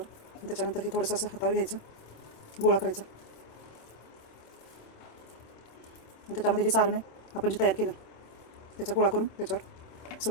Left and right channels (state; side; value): late; right; 26 ms